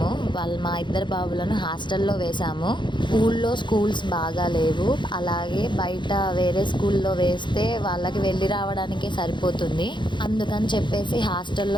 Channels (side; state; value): right; late; 0.23 ms